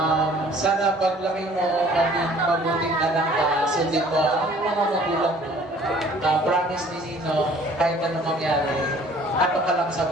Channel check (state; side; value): normal; both; correlation 0.54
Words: Sana paglaki mo, maging mabuting anak ka, sundin mo ang mga magulang mo. Promise ni Nino, kahit ano mangyari, ato ka lang sa